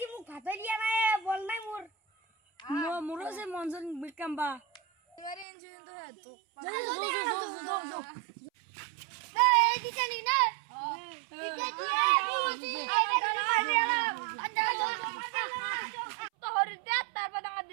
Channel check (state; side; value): drops out; left; at 5.5 s